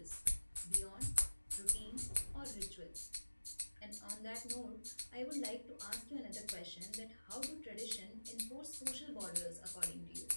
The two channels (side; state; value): both; inverted; correlation -1.00